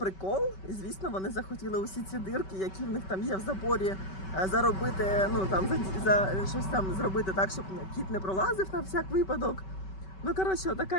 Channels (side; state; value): right; late; 5.3 ms